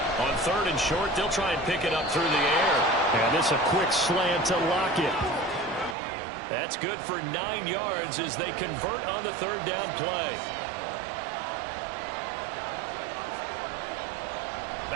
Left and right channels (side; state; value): left; drops out; at 6.0 s